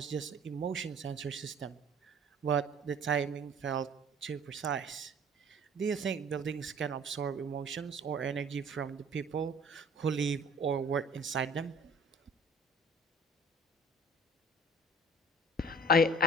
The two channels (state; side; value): normal; both; correlation 0.50